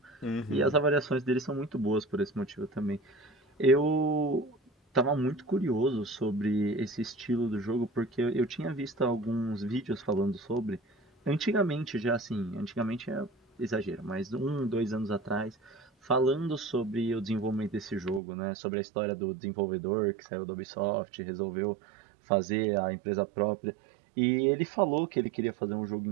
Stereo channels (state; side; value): drops out; left; at 18.2 s